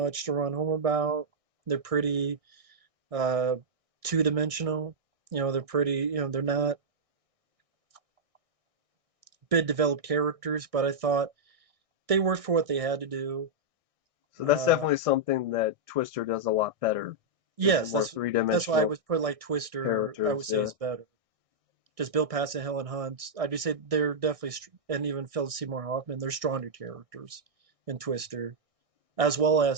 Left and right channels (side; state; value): left; late; 1.6 ms